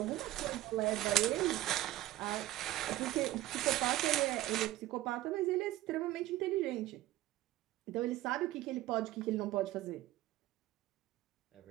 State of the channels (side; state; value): left; quieter; 15.7 dB